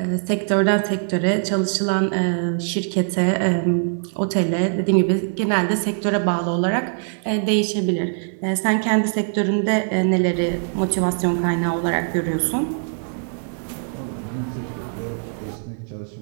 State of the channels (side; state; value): left; silent; 64 dB below the other